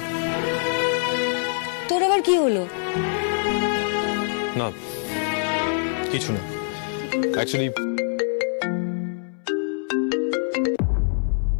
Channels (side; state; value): right; silent; 62 dB below the other